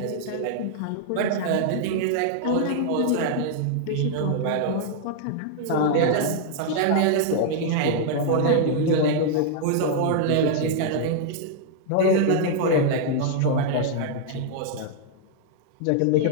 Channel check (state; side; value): different; both; correlation -0.01